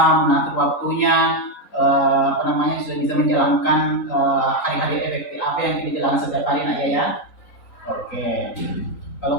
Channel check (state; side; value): late; right; 3.9 ms